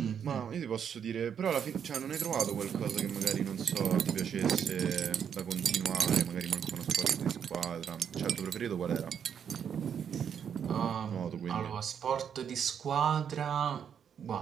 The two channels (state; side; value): quieter; left; 8.0 dB